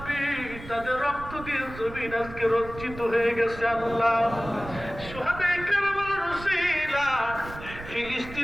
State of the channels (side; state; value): right; noise; rumble, 13 dB below the sound